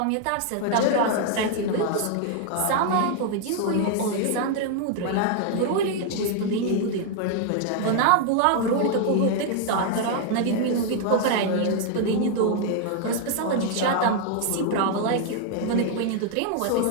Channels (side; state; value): both; different; correlation 0.00